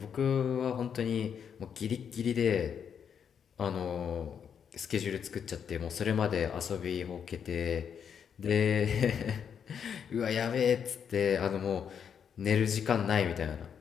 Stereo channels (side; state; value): right; quieter; 7.6 dB